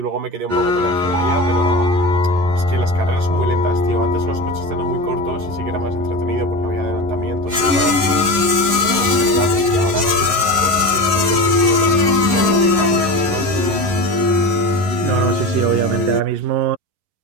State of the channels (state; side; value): late; left; 11 ms